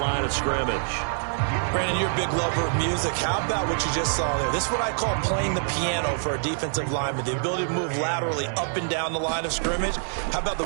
of scrimmage. Brandon, you're a big lover of music. How about what you just saw there? This is what I call playing the piano for a defensive lineman. The ability to move laterally up and down the line of scrimmage. How about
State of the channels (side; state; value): left; silent; digital silence